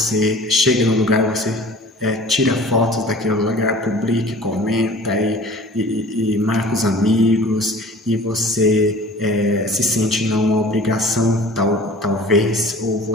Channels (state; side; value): normal; both; correlation 0.45